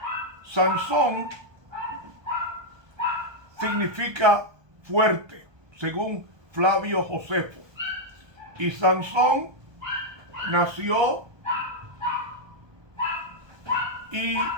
Sansón significa fuerte, según Flavio Josefo. Y Sansón nació y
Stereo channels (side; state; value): left; late; 1.2 ms